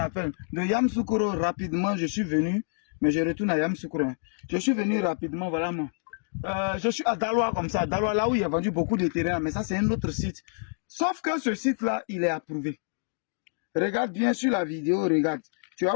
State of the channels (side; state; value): right; silent; digital silence